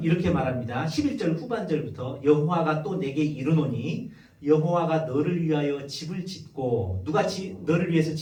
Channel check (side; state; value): both; identical; correlation 1.00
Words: 이렇게 말합니다. 11절 후반절부터 여호와가 또 내게 이르노니 여호와가 너를 위하여 집을 짓고, 누가 너를 위해서